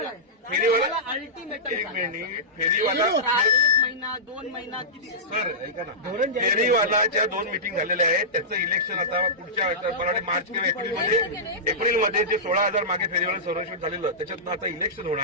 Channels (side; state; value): both; normal; correlation -0.16